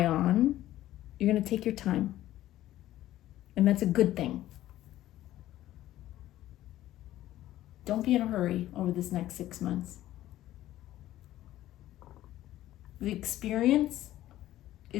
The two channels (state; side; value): quieter; right; 14.2 dB